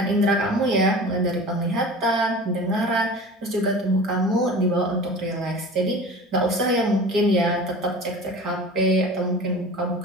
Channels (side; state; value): both; normal; correlation 0.37